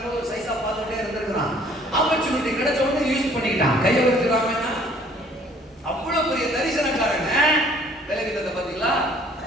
ஒரு சைஸா பார்த்துட்டே இருந்திருக்கிறான். ஆப்பர்ச்சுனிட்டி கிடைச்ச உடனே யூஸ் பண்ணிக்கிட்டான். கையை வச்சுக்கிறாங்கன்னா அவ்வளவு பெரிய தரிசனக்காரங்க. பலவீனத்தை பாத்தீங்களா?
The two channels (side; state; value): both; normal; correlation 0.57